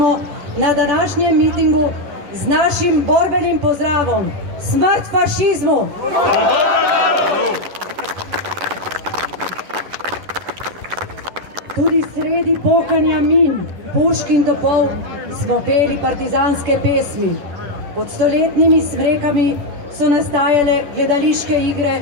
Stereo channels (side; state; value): left; late; 10 ms